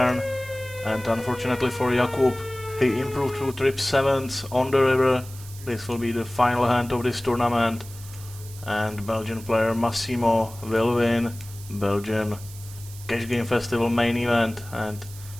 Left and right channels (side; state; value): right; noise; hiss, 17 dB below the sound